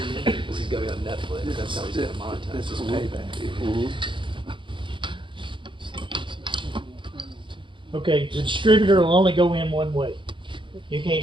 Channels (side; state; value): left; late; 0.24 ms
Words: go on Netflix. That's how he's gonna monetize. This is payback. Okay, the distributor will only go in one way. You